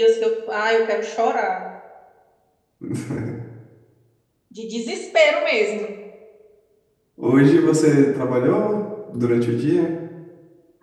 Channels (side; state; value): both; identical; correlation 1.00